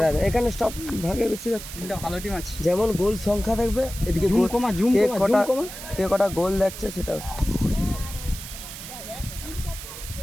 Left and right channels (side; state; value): right; noise; hiss, 11 dB below the sound